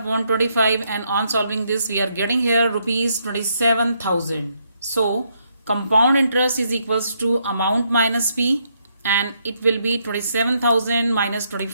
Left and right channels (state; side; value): inverted; both; correlation -0.75